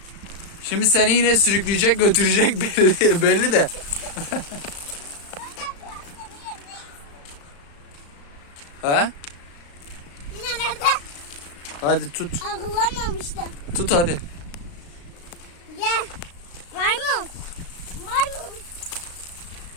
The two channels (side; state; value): right; late; 35 ms